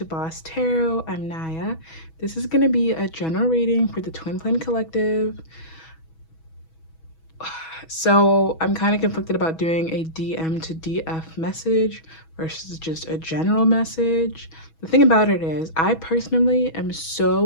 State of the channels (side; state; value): right; late; 6.2 ms